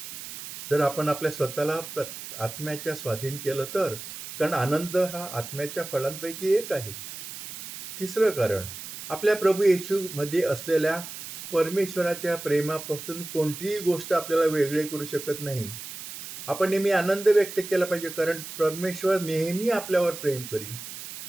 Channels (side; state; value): right; noise; hiss, 11 dB below the sound